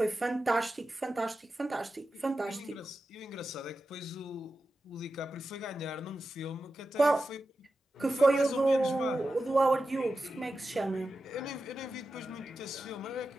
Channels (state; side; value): normal; both; correlation 0.92